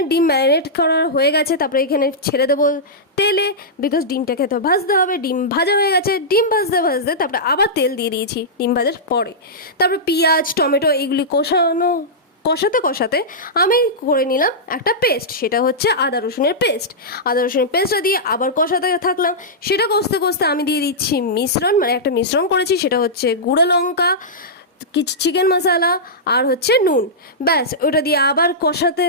ডিম ম্যারিনেট করা হয়ে গেছে, তারপরে এখানে ছেড়ে দেবো তেলে, বিকজ ডিমটাকে তো ভাজতে হবে। ডিম ভাজা হয়ে গেছে, ডিম ভাজতে ভাজতে তারপরে আবার তেল দিয়ে দিয়েছি ডিম ভাজার পরে। তারপর পেঁয়াজ, টমেটো এগুলি কষাতে কষাতে আমি করে নিলাম একটা পেস্ট, সেটা হচ্ছে আদা রসুনের পেস্ট। আদা রসুনের পেস্টটা দিয়ে আবার কষাতে থাকলাম। সেটা কষতে কষতে আমি দিয়ে দিচ্ছি মিশ্রণ, মানে একটা মিশ্রণ করেছি, সেটা হচ্ছে গুঁড়ো লঙ্কা, কিছু চিকেন মশলা আর হচ্ছে নুন। ব্যাস, ওটা দিয়ে আবার কষাতে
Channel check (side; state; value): both; normal; correlation -0.13